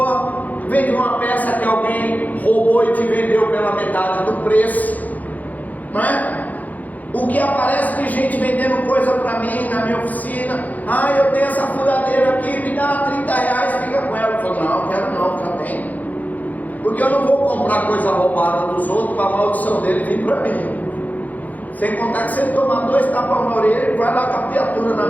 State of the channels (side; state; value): right; late; 0.079 ms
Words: veio de uma peça que alguém roubou e te vendeu pela metade do preço, não é? O que aparece de gente vendendo coisa para mim na minha oficina: eu tenho essa furadeira aqui, me dá R$30, fica com ela. Eu falo: não, quero não, já tem. Porque eu não vou comprar coisa roubada dos outros para a maldição dele vir para mim. Sem contar que se ele tomar 2 tapas na orelha, ele vai lá com a criatura na